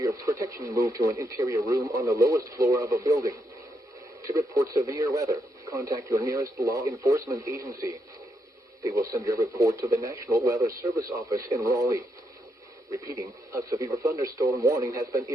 protection, move to an interior room on the lowest floor of a building. To report severe weather, contact your nearest law enforcement agency. They will send your report to the National Weather Service office in Raleigh. Repeating, a severe thunderstorm warning has been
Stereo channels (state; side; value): normal; both; correlation 0.80